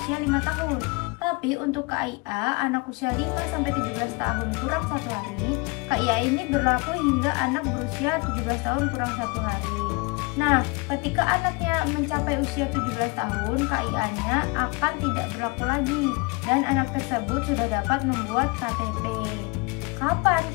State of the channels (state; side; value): quieter; right; 27.5 dB